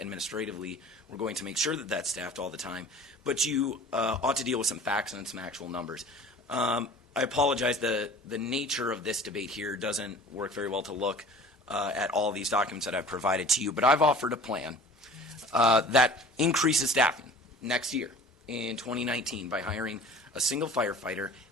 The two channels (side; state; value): both; normal; correlation 0.44